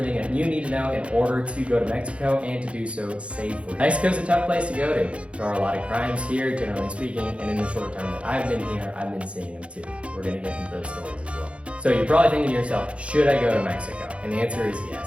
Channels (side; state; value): left; late; 0.061 ms